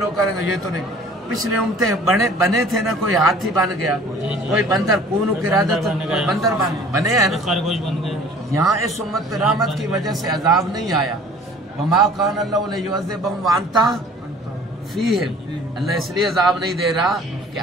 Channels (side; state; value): both; normal; correlation 0.50